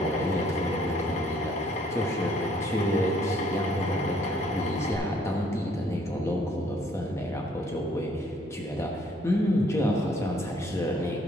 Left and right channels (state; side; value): normal; both; correlation 0.63